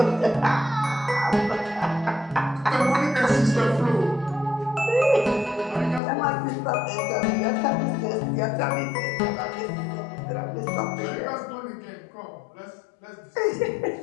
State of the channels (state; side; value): drops out; right; at 6.0 s